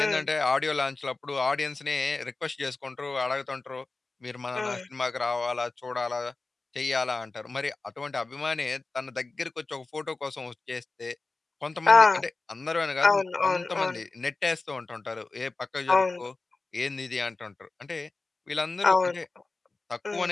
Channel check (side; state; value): right; quieter; 3.6 dB